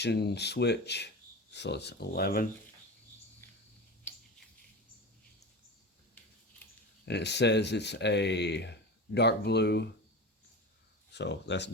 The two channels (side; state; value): both; normal; correlation 0.28